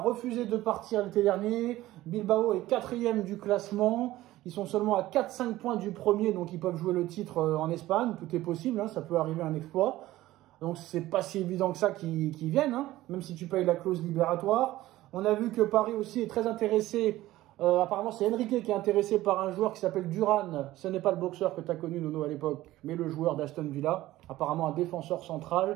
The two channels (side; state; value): left; quieter; 16.1 dB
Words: de partir l'été dernier. Bilbao est 4e du classement. Ils sont seulement à 4-5 points du premier, donc ils peuvent jouer le titre en Espagne. Tout est possible, hein, ça peut arriver un exploit. Donc c'est pas si évident que ça qu'ils viennent, hein, même si tu payes la clause libératoire. On a vu que Paris aussi est très intéressé. Apparemment, c'est Enrique qui est intéressé par un joueur qui s'appelle Duran. Ce n'est pas le boxeur que tu as connu, Nono, à l'époque, mais le joueur d'Aston Villa. Apparemment, un défenseur